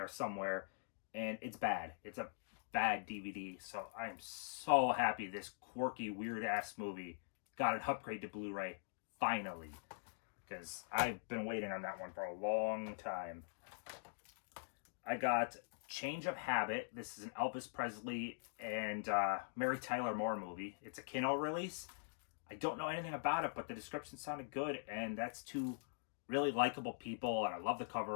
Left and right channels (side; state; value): right; silent; digital silence